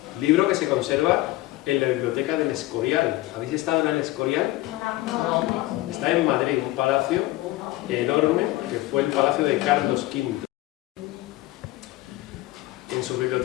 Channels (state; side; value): quieter; right; 18.1 dB